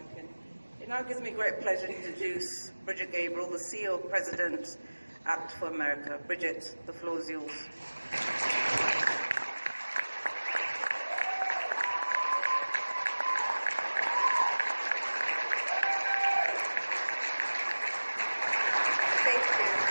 It now gives me great pleasure to introduce Bridget Gabriel, the CEO President at for America. Bridget, the floor is yours. Thank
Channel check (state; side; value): inverted; both; correlation -1.00